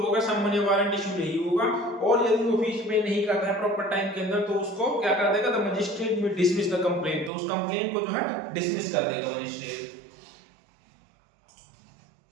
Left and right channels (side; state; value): left; drops out; at 7.3 s